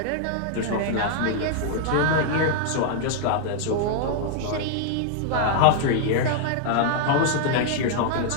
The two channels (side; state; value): both; different; correlation -0.01